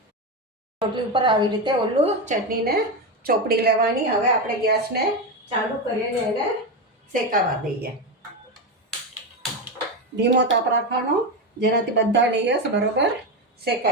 રોટલી ઉપર આવી રીતે ઓલું ચટણીને ચોપડી લેવાની. હવે આપણે ગેસને ચાલુ કરીને એને શેકાવા દઈએ. ધીમો તાપ રાખવાનો, જેનાથી બધા લેયર્સ બરોબર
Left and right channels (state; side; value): normal; both; correlation 0.14